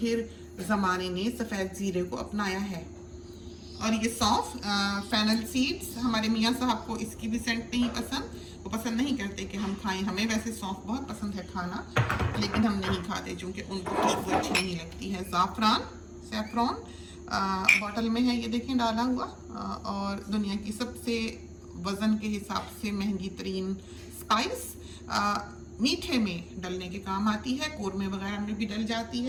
ज़माने ने सफ़ेद ज़ीरे को अपनाया है। और ये सौंफ, फेनल सीड्स, हमारे मियाँ साहब को इसकी भी सेंट नहीं पसंद, वो पसंद नहीं करते कि हम खाएं। हमें वैसे सौंफ बहुत पसंद है खाना, लेकिन हम नहीं खाते क्योंकि उनको खुशबू अच्छी नहीं लगती है। ज़ाफ़रान, सैफ़रॉन बॉटल में है, ये देखें डाला हुआ, और दुनिया की सबसे वज़न के हिसाब से महंगी तरीन स्पाइस, मीठे में डलने के काम आती है, कोरमे वगैरह में भी डल जाती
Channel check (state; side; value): identical; both; correlation 1.00